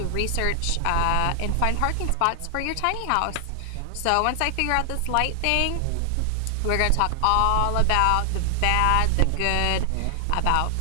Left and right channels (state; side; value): different; both; correlation 0.00